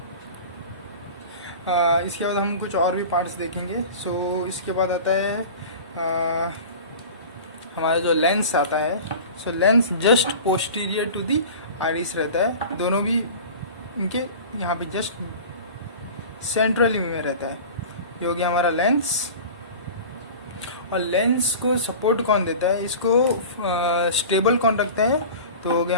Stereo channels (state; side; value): inverted; both; correlation -0.36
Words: इसके बाद हम कुछ और भी पार्ट्स देखेंगे। सो इसके बाद आता है हमारा जो लेंस आता है। So lens just posterior to the iris रहता है, दोनों भी इनके यहाँ पे जस्ट सेंट्रली में रहता है। ये हो गया हमारा लेंस। और लेंस को सपोर्ट कौन देता है, इसको स्टेबल कौन रखता है? तो हो गया